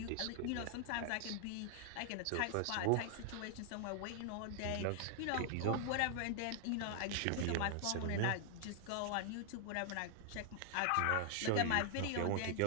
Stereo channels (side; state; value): both; different; correlation 0.00